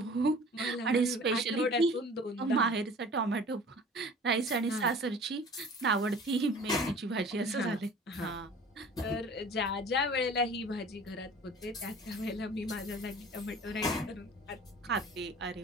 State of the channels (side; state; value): both; normal; correlation 0.45